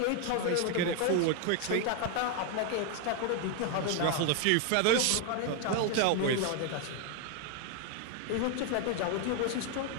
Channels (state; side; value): different; both; correlation 0.01